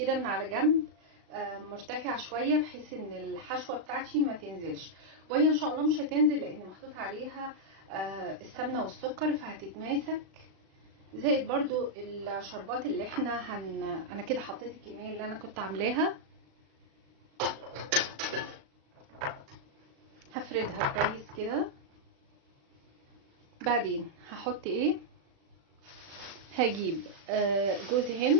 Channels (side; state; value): left; late; 36 ms